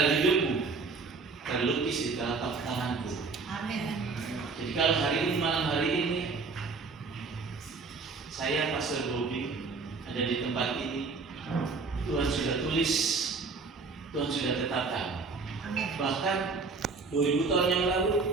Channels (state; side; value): quieter; left; 4.4 dB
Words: hidupmu terlukis di telapak tanganku. Amin. Jadi kalau malam hari ini saya Pastor Bobi ada di tempat ini, Tuhan sudah tulis, Tuhan sudah tetapkan. Bahkan 2000 tahun yang